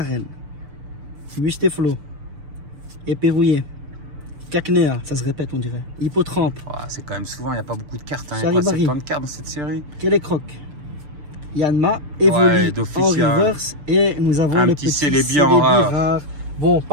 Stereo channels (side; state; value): left; late; 6.8 ms